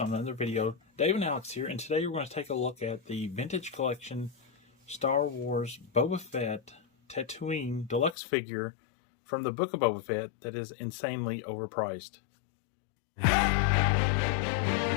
another video. Dave and Alex here, and today we're going to take a look at the Vintage Collection Star Wars Boba Fett Tatooine Deluxe figure from the Book of Boba Fett that is insanely overpriced.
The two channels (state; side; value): drops out; right; at 8.2 s